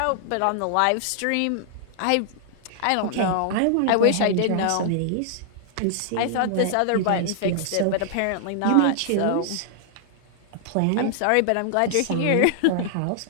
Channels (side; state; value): both; different; correlation 0.00